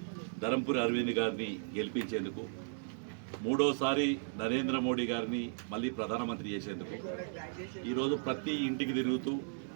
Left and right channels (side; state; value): left; silent; digital silence